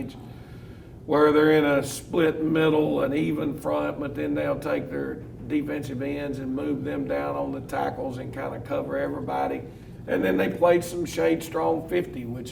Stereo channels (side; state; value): both; identical; correlation 1.00